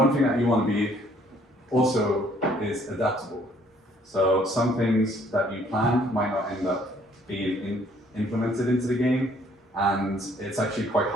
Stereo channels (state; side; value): normal; both; correlation 0.62